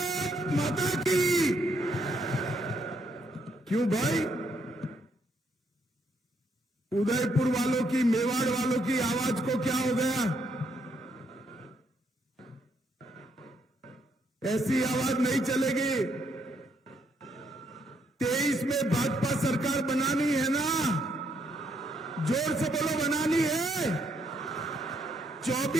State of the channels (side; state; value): both; normal; correlation 0.74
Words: माता की। क्यों भाई? उदयपुर वालों की, मेवाड़ वालों की आवाज को क्या हो गया? ऐसी आवाज नहीं चलेगी। 23 में भाजपा सरकार बनानी है ना? जोर से बोलो, बनानी है।